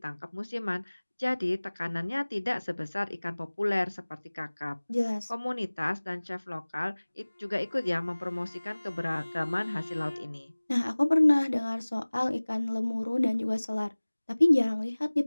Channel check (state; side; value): inverted; both; correlation -1.00